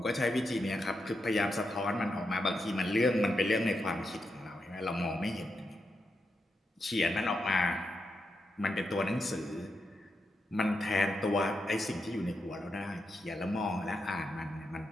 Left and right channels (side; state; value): both; normal; correlation 0.85